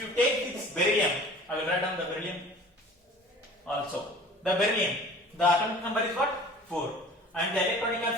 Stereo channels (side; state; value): both; normal; correlation 0.44